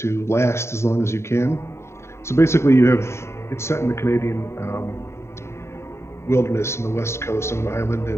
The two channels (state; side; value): late; right; 0.13 ms